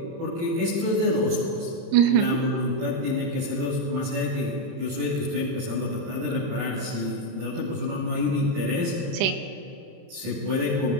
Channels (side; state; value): left; late; 30 ms